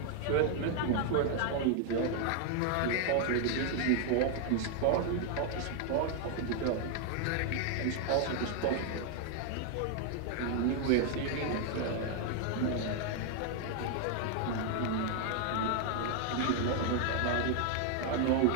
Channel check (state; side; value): different; both; correlation 0.00